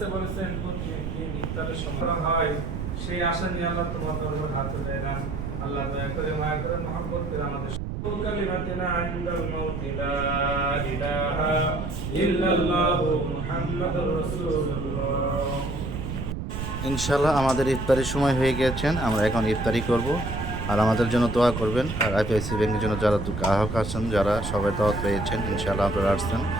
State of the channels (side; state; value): right; noise; rumble, 5 dB below the sound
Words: বলেছেন প্রতিদিন ইফতারের সময় হয়, সেই আশা নিয়ে আল্লাহ তোমার দরবারে হাত উঠাই না। আল্লাহ দয়া করে মায়া করে মহব্বত করে আমাদের কালিমাতিনা ইনদাল মাউত লা ইলাহা ইল্লাল্লাহু মুহাম্মাদুর রাসূলুল্লাহ। ইনশাআল্লাহ আমাদের ইফতারির সময় হয়ে গেছেন, আমরা এখন ইফতারি করব। আর আমাদের জন্য দোয়া করবেন। আর আইপিআইসি ব্যাংকের জন্য যারা গ্রাহক আছেন, যারা সবাই দাওয়াত পেয়েছেন, ইনশাআল্লাহ আপনারা আসছেন,